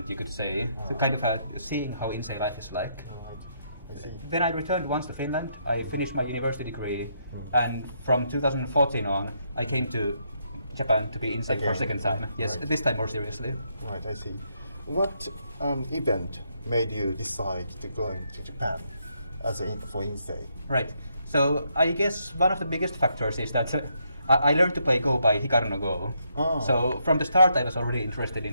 you could say. So kind of seeing how insei life is like. Right. I see. Then I returned once to Finland. I finished my university degree, and from 2014 on, I came to Japan to be insei for a second time. Yes, Right. this time more seriously. Right, I see. What event made you decide to go to Japan for insei? Right. So I guess one of the biggest factors is that I learned to play Go by Hikaru no Go. Oh. So from the start, I was already interested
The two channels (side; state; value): both; inverted; correlation -0.76